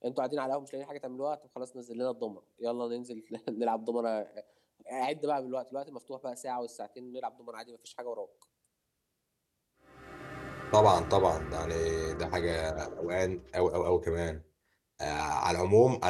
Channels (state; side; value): identical; both; correlation 1.00